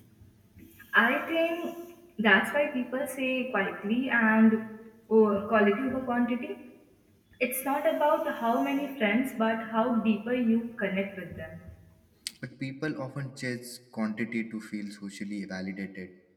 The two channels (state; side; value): identical; both; correlation 1.00